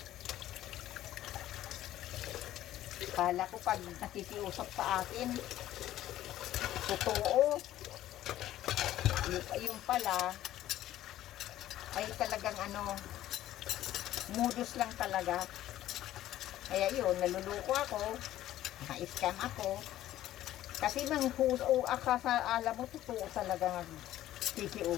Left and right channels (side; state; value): right; quieter; 13.6 dB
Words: Kala ko pag nakikiusap sa akin, totoo. Yung pala, ay talagang modus lang talaga. Kaya yun, naluluko ako, na-scam ako. Kasi alam mo, totoo talaga